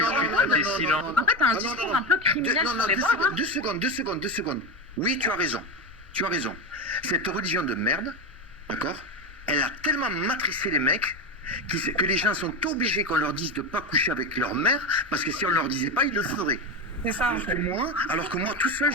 silent. En fait, t'as un discours un peu criminel sur les bords. Deux secondes. Oui, tu as raison. Cette religion de merde, d'accord, elle a tellement matricé les mecs que les gens sont obligés qu'on leur dise de ne pas coucher avec leur mère, parce que si on ne leur disait pas, ils le feraient. C'est ça. Alors que moi, tout seul,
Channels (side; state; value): left; noise; rumble, 22 dB below the sound